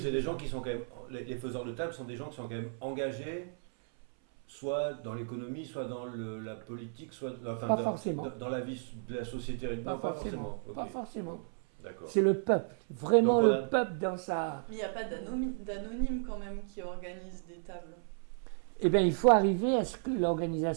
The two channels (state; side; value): silent; left; 55 dB below the other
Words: des gens qui sont quand même. Les faiseurs de table sont des gens qui sont quand même engagés, soit dans l'économie, soit dans la politique, soit Pas forcément. Dans la vie de la société. Pas Non, forcément. Ok. Pas forcément. D'accord. C'est le peuple, vraiment Donc, le voilà. peuple dans sa... Mais il n'y a pas d'anonymes quand même qui organisent des tables. Eh bien, il faut arriver à ce que